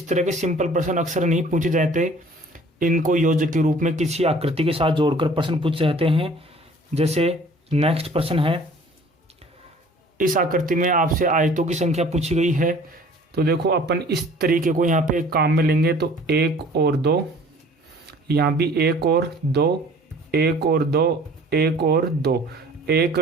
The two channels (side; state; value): both; normal; correlation 0.50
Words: तरह के सिंपल प्रश्न अक्सर नहीं पूछे जाते, इनको योजक के रूप में किसी आकृति के साथ जोड़कर प्रश्न पूछे जाते हैं। जैसे नेक्स्ट प्रश्न है, इस आकृति में आपसे आयतों की संख्या पूछी गई है तो देखो अपन इस तरीके को यहाँ पे एक काम में लेंगे तो 1 और 2, यहाँ भी 1 और 2, 1 और 2, 1 और 2, 1